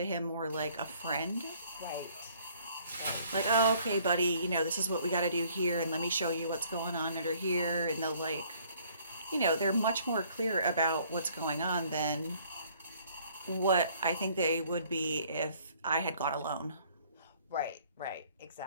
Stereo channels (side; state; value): both; inverted; correlation -0.60